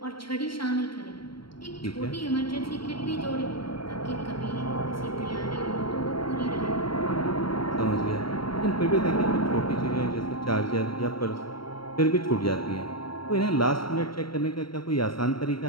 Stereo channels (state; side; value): late; right; 0.73 ms